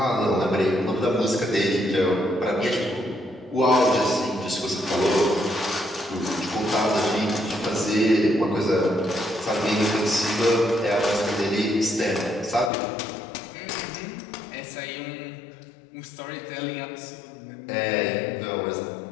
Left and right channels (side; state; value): right; drops out; at 12.7 s